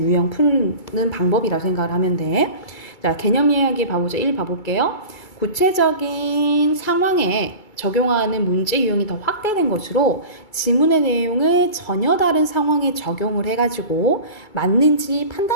푸는 방법이라고 생각을 하면 돼. 자, 개념 이야기 봐보자. 1 봐볼게요. 구체적인 상황에 적용하는 문제 유형이 더 확대된 것으로 지문의 내용을 전혀 다른 상황에 적용을 해가지고 맞는지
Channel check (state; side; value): late; right; 2.3 ms